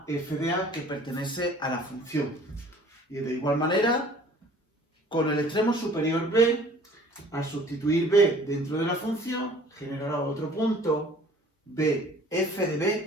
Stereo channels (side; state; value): both; normal; correlation 0.51